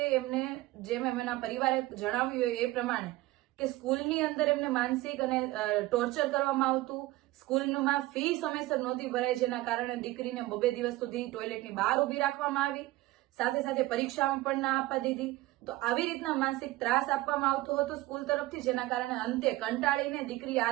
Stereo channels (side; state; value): left; quieter; 18.4 dB